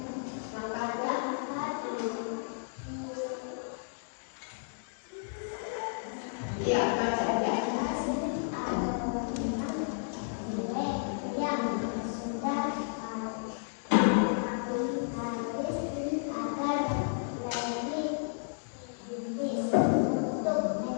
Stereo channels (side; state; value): right; silent; digital silence